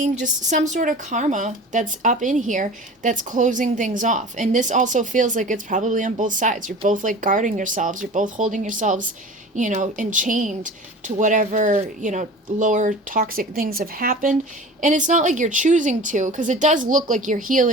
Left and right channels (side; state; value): both; normal; correlation 0.38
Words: just some sort of karma that's up in here that's closing things off. And this also feels like it's probably on both sides. You're both like guarding yourselves. You're both holding yourselves, enchained to whatever, lower toxic things have happened. And it's not like you're choosing to, because it does look like you're